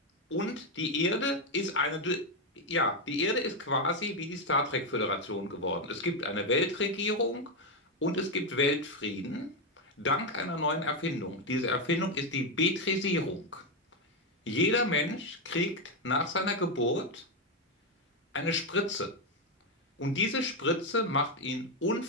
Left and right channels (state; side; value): normal; both; correlation 0.06